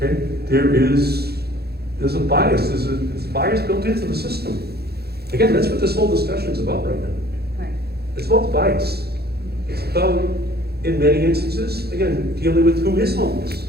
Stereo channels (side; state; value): left; late; 0.46 ms